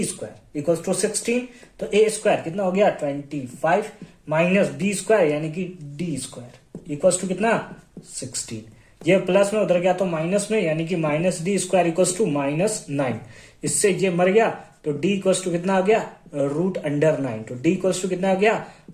square equals to 16, तो ए स्क्वायर कितना हो गया 25 माइनस बी स्क्वायर यानी कि डी स्क्वायर इक्वल्स टू कितना 16। ये प्लस में उधर गया तो माइनस में, यानी कि minus d square equals to -9। इससे ये मर गया तो डी इक्वल्स टू कितना आ गया √9। तो डी इक्वल्स टू कितना आ गया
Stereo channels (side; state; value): both; identical; correlation 1.00